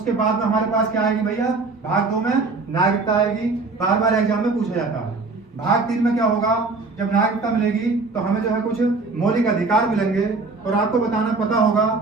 बाद में हमारे पास क्या आएगी भैया? भाग 2 में नागरिकता आएगी, बार बार एग्जाम में पूछा जाता है। भाग 3 में क्या होगा? जब नागरिकता मिलेगी तो हमें जो है कुछ मौलिक अधिकार मिलेंगे, और आपको बताना पता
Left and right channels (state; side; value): quieter; left; 3.8 dB